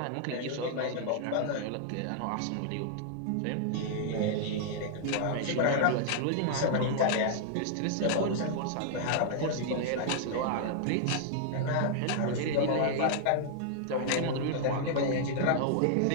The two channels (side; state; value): both; different; correlation -0.01